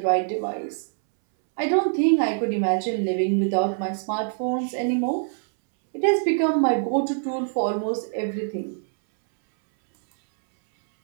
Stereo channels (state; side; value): silent; left; 63 dB below the other